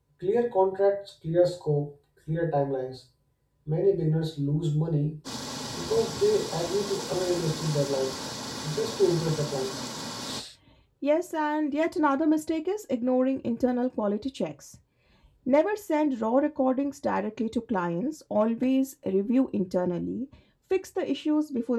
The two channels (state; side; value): identical; both; correlation 1.00